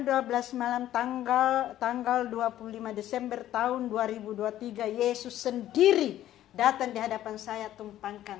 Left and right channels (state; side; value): quieter; right; 12.8 dB